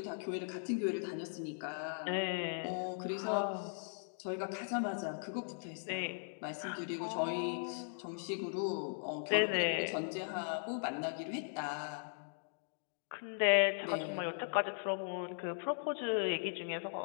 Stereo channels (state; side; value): silent; right; digital silence